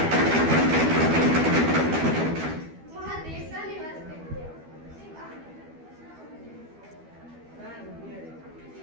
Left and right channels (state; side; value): late; left; 12 ms